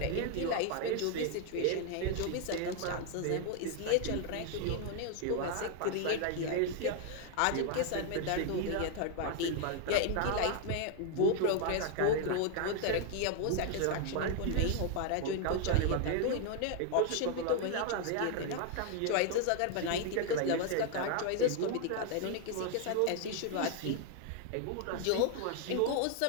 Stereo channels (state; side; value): different; both; correlation 0.00